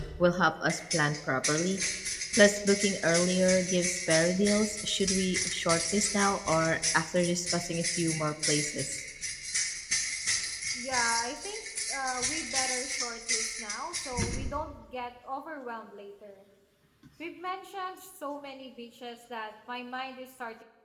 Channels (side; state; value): both; identical; correlation 1.00